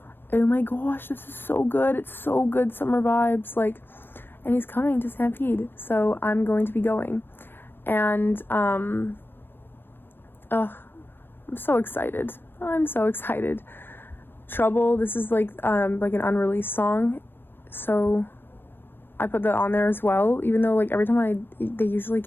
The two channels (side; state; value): right; late; 0.10 ms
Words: oh my gosh, this is so good. It's so good, summer vibes, like, and he's coming to Stampede, so I'm going to be going. And I'm so excited. Trouble, this is like an unreleased song, so I put that on there as well, even though like every time they usually